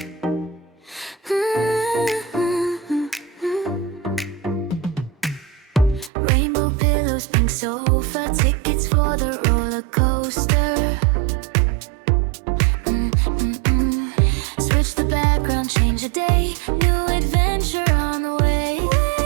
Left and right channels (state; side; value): drops out; left; at 6.1 s